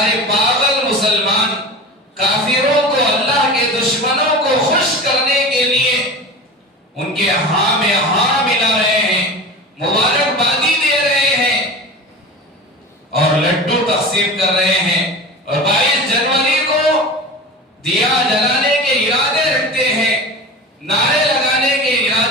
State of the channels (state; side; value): normal; both; correlation 0.31